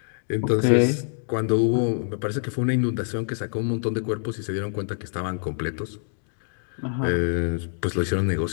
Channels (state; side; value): silent; right; 61 dB below the other